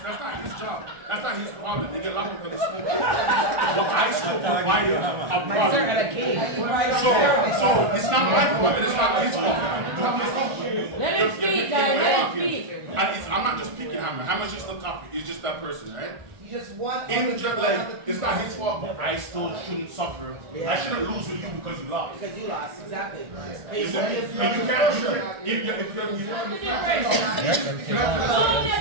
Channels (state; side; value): late; left; 1.5 ms